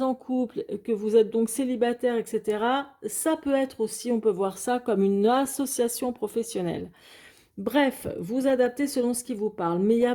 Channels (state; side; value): identical; both; correlation 1.00